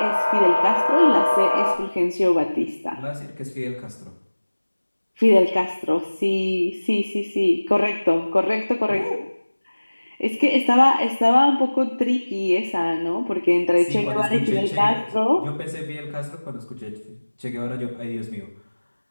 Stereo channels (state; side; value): inverted; both; correlation -1.00